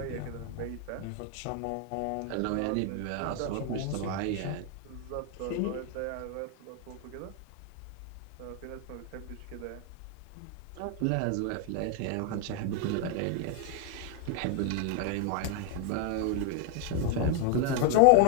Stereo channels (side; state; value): both; different; correlation 0.01